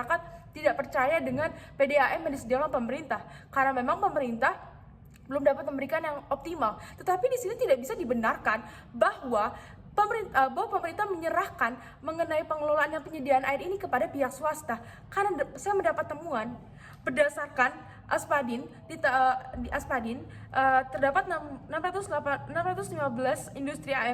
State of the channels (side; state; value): both; identical; correlation 1.00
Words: tidak percaya dengan PDAM yang disediakan pemerintah, karena memang pemerintah belum dapat memberikan yang optimal. Tetapi di sini tidak bisa dibenarkan bahwa pemerintah menyerahkan mengenai pengelolaan dan penyediaan air ini kepada pihak swasta. Karena saya mendapat temuan berdasarkan Aspadin, di Aspadin terdapat 615 industri